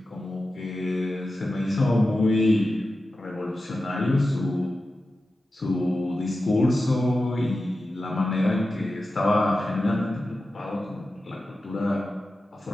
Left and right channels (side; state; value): both; normal; correlation 0.93